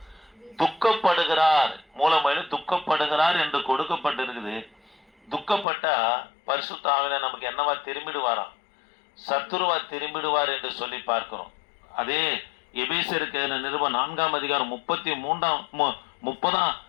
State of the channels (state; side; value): drops out; right; at 5.7 s